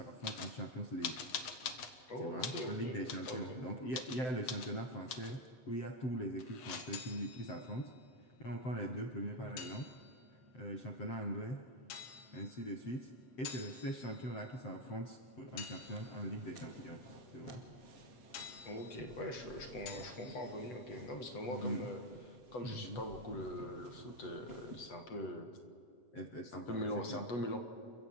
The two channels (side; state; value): right; late; 8.2 ms